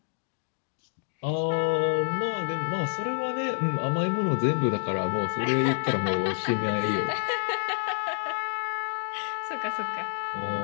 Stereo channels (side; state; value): right; silent; digital silence